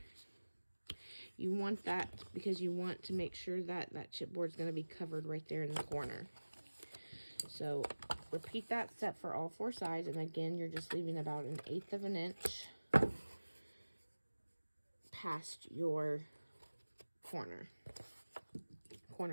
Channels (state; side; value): inverted; both; correlation -1.00